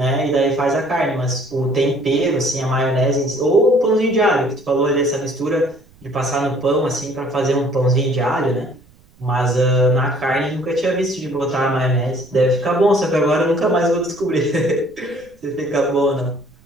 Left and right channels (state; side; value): noise; right; rumble, 29 dB below the sound